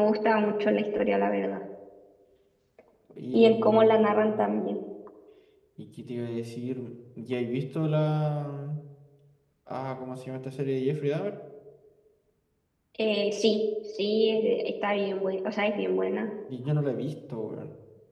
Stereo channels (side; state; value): both; identical; correlation 1.00